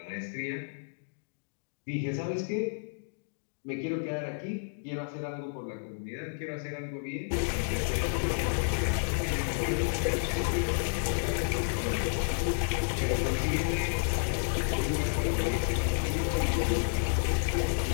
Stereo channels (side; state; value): right; silent; digital silence